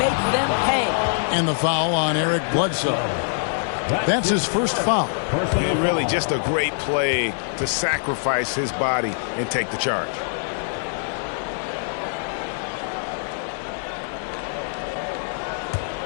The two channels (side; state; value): right; silent; 63 dB below the other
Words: them pay. And the foul on Eric Bledsoe. That's his first foul. And really just a great play to sacrifice his body and take the charge.